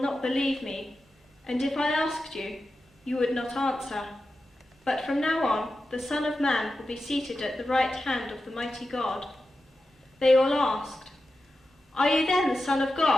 believe me, and if I asked you, you would not answer. But from now on, the Son of Man will be seated at the right hand of the mighty God." They all asked, "Are you then the Son of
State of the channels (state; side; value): normal; both; correlation 0.91